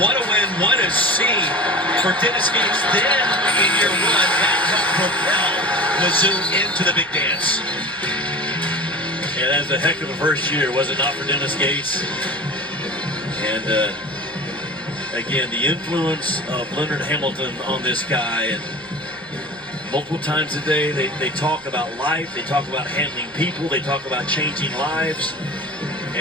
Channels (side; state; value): right; noise; rumble, 29 dB below the sound